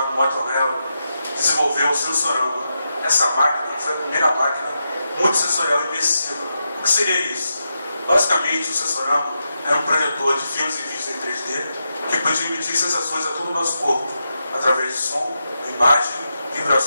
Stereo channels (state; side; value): inverted; both; correlation -0.86